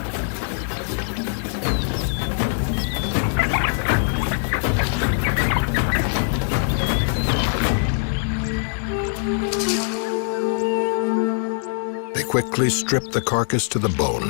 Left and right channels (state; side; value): silent; right; digital silence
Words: Quickly strip the carcass to the